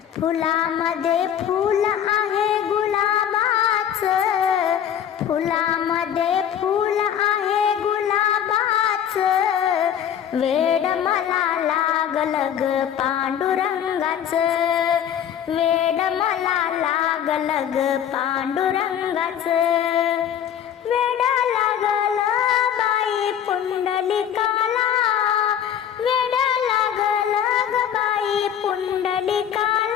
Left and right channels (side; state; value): right; quieter; 9.4 dB